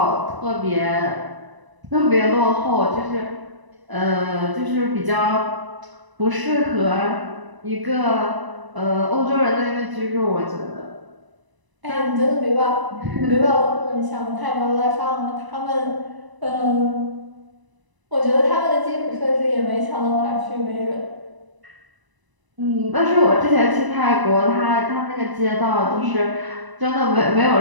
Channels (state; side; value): late; left; 1.0 ms